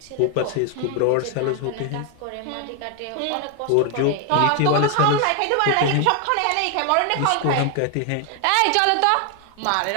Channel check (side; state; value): both; different; correlation 0.01